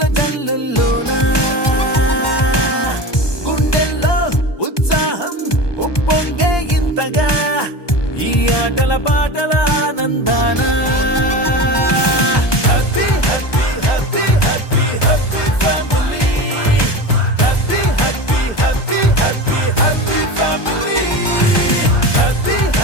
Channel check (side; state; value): right; late; 1.2 ms